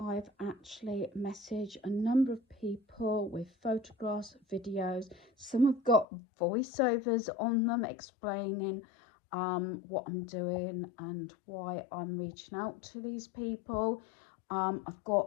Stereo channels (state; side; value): drops out; right; at 6.1 s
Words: actually messaged a number of people with photographs, videos. Some have got voiceovers on them explaining what I'm doing and why I'm reaching out to these people. I've